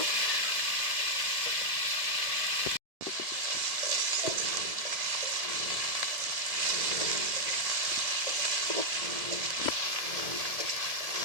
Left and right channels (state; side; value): late; left; 1.7 ms